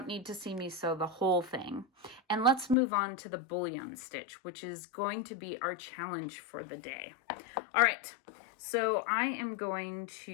need to see me sew the whole thing. And let's move on to the bullion stitch, which is going to be our challenge for the day. All right. So I am going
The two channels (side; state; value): right; drops out; at 2.8 s